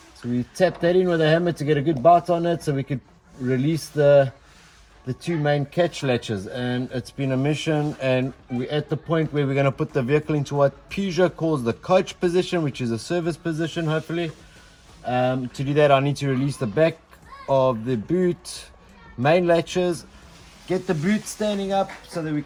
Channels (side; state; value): both; identical; correlation 1.00